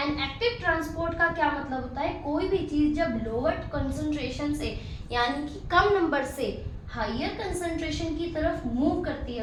active transport का क्या मतलब होता है, कोई भी चीज जब लोअर कंसंट्रेशन से यानी कि कम नंबर से हायर कंसंट्रेशन की तरफ मूव करती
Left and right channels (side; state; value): both; identical; correlation 1.00